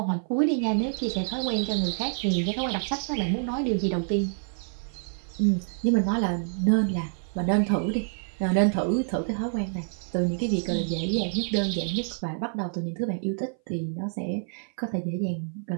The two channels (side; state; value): left; silent; 58 dB below the other